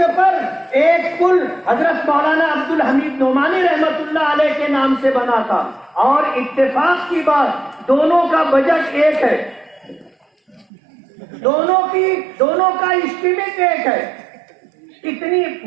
پر ایک پل حضرت مولانا عبدالحمید نعمانی رحمت اللہ علیہ کے نام سے بنا تھا، اور اتفاق کی بات دونوں کا بجٹ ایک ہے، دونوں کا اسٹیمیٹ ایک ہے۔ اتنی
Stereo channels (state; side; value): drops out; left; at 10.7 s